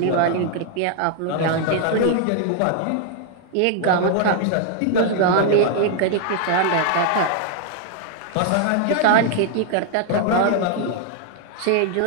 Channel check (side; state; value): both; different; correlation 0.00